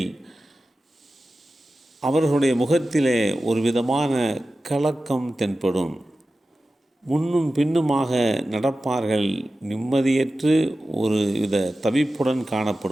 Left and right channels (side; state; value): both; normal; correlation 0.94